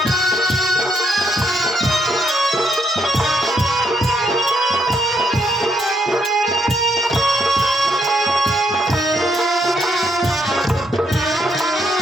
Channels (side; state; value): both; normal; correlation 0.74